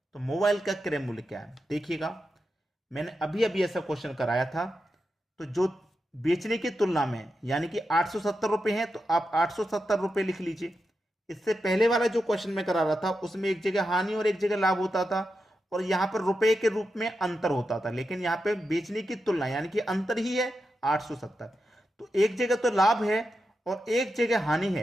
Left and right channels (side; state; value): both; normal; correlation 0.88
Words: तो मोबाइल का क्रय मूल्य क्या है। देखिएगा मैंने अभी अभी ऐसा क्वेश्चन कराया था, तो जो बेचने की तुलना में यानी कि 870 रुपये हैं तो आप 870 रुपये लिख लीजिए। इससे पहले वाला जो क्वेश्चन मैं करा रहा था उसमें एक जगह हानि और एक जगह लाभ होता था और यहां पर रुपए के रूप में अंतर होता था, लेकिन यहां पे बेचने की तुलना यानी कि अंतर ही है 870। तो एक जगह तो लाभ है और एक जगह हानि